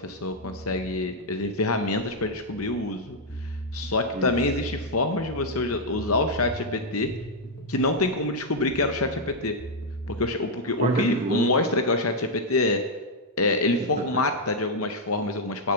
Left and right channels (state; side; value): normal; both; correlation -0.03